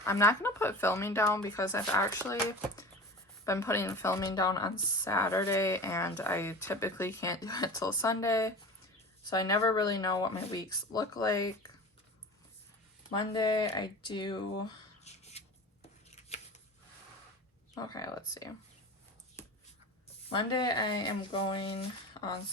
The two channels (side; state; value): both; normal; correlation 0.35